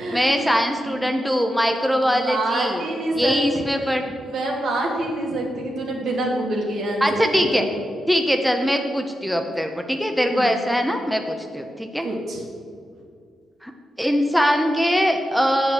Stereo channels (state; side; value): normal; both; correlation 0.89